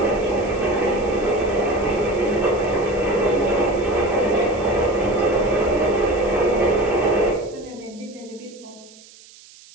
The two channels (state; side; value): noise; right; hiss, 23 dB below the sound